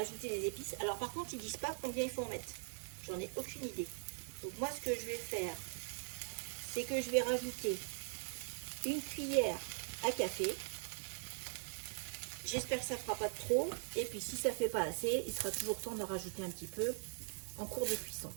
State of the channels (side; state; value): left; silent; digital silence